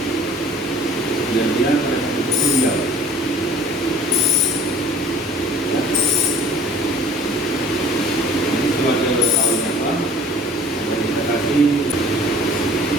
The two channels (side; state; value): both; normal; correlation 0.50